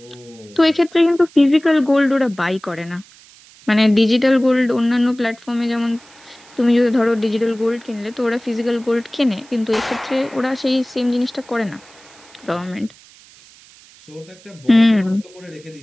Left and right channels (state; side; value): noise; right; hiss, 25 dB below the sound